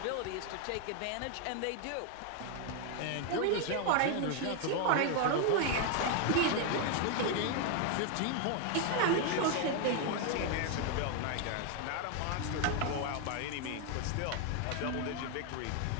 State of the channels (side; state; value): both; different; correlation 0.01